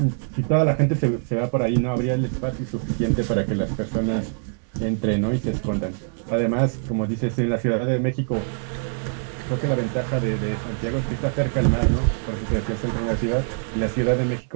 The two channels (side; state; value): left; silent; digital silence